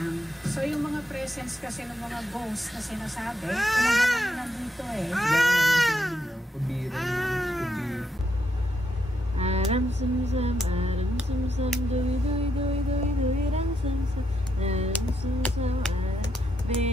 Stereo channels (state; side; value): normal; both; correlation 0.80